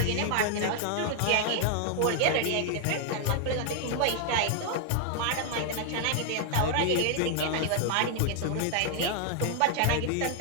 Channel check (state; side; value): different; both; correlation 0.00